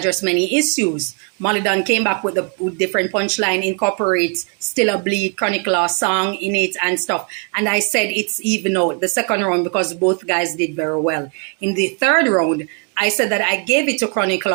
many issues. Malie came back with a different punchline, incorporates Still a Bleed, Chronic Law song in it and stuff. And I said it's even out the second round because both guys did very well. In the third round, I said that I gave it to Chronic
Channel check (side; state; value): left; quieter; 39.3 dB